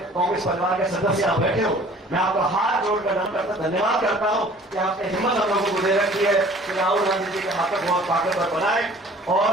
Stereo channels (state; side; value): normal; both; correlation 0.50